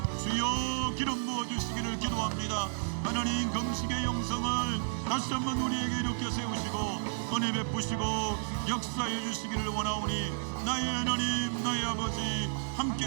주여 기름 부어주시기를 기도합니다. 하나님, 금식의 영성을 다시 한번 우리에게 이렇게 세우시고 은혜 베푸시고 역사해 주시기를 원하오니, 나의 하나님, 나의 아버지 함께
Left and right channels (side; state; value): left; silent; digital silence